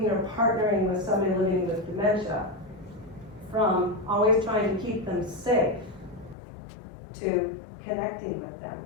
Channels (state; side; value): drops out; right; at 6.4 s